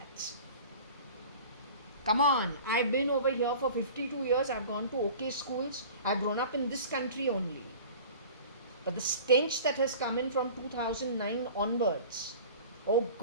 Come on, I've been over here for 52 years. I've gone to okay schools. I've grown up in this country only. But the stench that has come in from 2009 onwards, oh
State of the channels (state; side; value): inverted; both; correlation -0.41